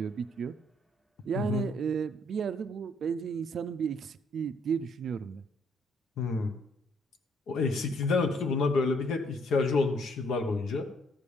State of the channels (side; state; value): both; normal; correlation 0.67